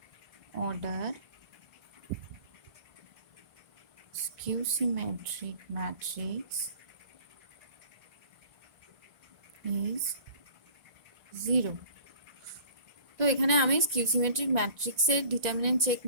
order skew symmetric matrix is 0. তো এখানে আমি স্কিউ সিমেট্রিক ম্যাট্রিক্সের ডিটারমিনেন্ট চেক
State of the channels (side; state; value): left; late; 1.5 ms